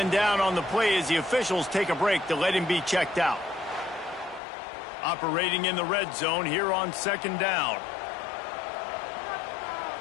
down on the play as the officials take a break to let him be checked out. Operating in the red zone here on 2nd down.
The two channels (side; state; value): right; drops out; at 4.4 s